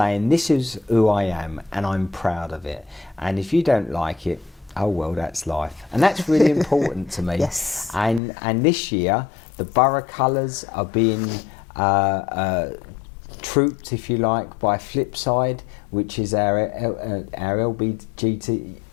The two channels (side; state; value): right; drops out; at 8.2 s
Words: this is who I am and I'm proud of it. And if you don't like it, oh well, that's life. And that's really important to me. Yes. And this year, the borough colours are being trooped, if you like, by Flipside, which is our LGBT